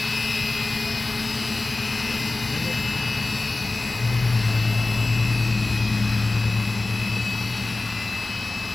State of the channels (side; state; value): right; quieter; 3.2 dB